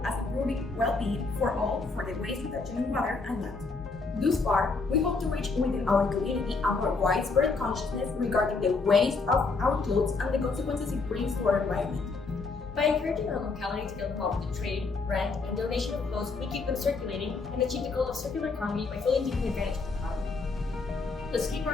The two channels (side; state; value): right; quieter; 4.1 dB